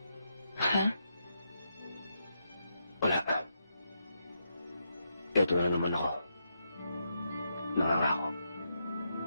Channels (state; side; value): inverted; both; correlation -0.82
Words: Ha? Wala. Ito na naman ako. Nangangako.